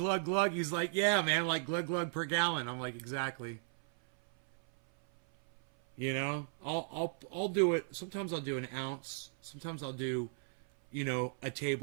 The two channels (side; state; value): left; silent; 54 dB below the other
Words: glug. He's like, yeah, man, like glug, glug per gallon. I'm like, exactly. I'll do it. Sometimes I'll do an ounce. Sometimes I'll do, a